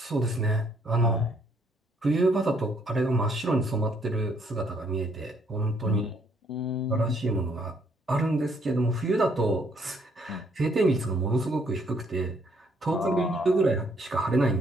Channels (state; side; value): normal; both; correlation 0.68